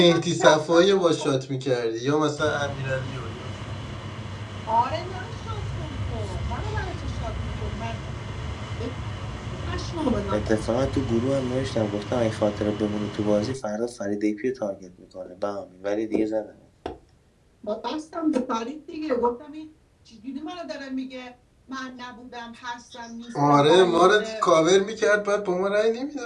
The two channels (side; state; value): both; identical; correlation 1.00